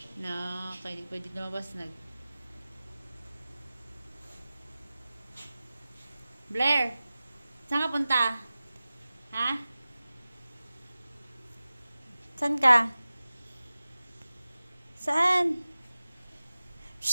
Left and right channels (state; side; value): inverted; both; correlation -0.97